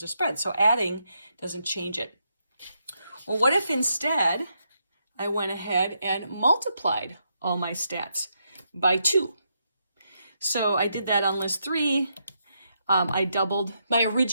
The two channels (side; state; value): both; inverted; correlation -0.80